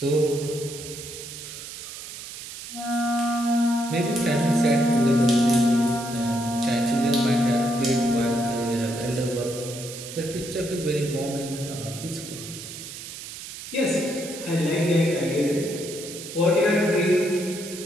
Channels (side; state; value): right; noise; hiss, 11 dB below the sound